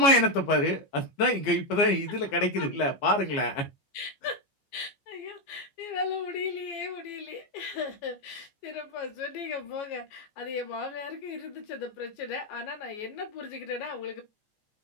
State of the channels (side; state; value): right; late; 14 ms